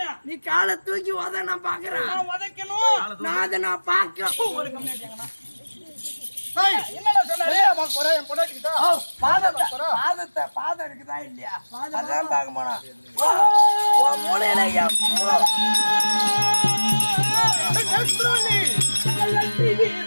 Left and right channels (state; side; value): inverted; both; correlation -1.00